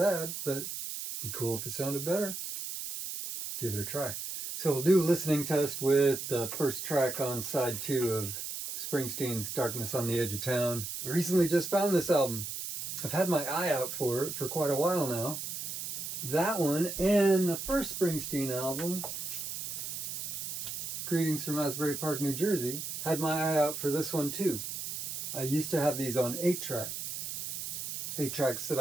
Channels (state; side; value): noise; right; hiss, 5 dB below the sound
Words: but be cool if it sounded better. Give it a try. So we'll do a listening test with the first track on side 2 of Springsteen's Darkness on the Edge of Town. I recently just found this album. I've had my eye out for it for quite a while now. That one and the first Springsteen album, Greetings from Asbury Park, New Jersey, had my eye out for this one too. I used to have these on 8-track. 8 tracks that